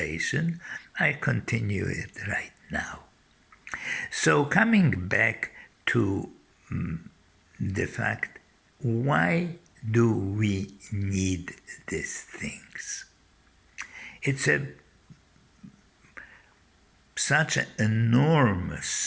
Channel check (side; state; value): both; identical; correlation 1.00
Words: I continue it right now. So, coming back to the fact, why do we need these things? It's such an